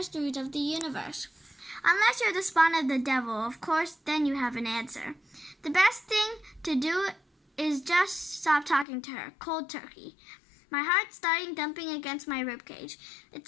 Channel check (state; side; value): drops out; right; at 8.8 s